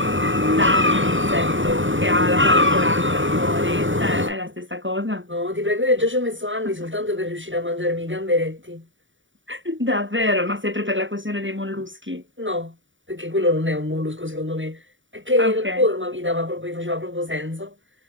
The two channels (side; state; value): left; late; 0.56 ms